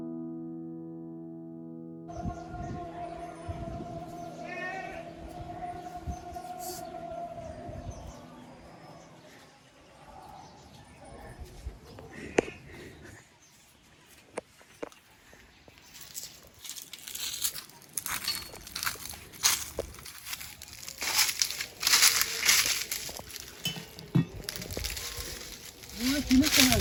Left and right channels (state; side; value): identical; both; correlation 1.00